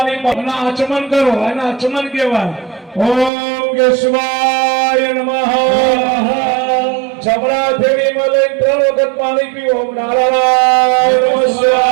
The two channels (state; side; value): drops out; left; at 3.3 s